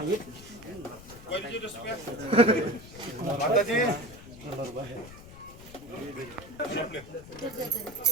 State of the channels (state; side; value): noise; left; rumble, 17 dB below the sound